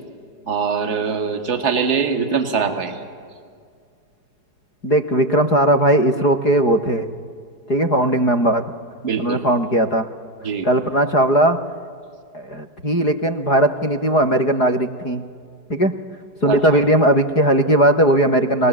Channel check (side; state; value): right; late; 4.8 ms